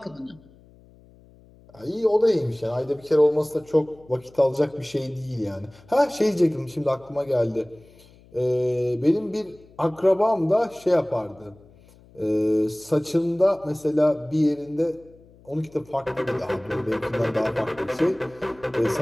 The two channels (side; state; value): left; noise; hum, 26 dB below the sound